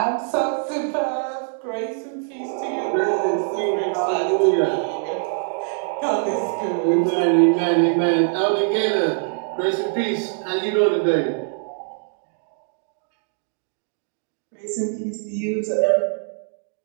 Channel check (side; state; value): left; silent; digital silence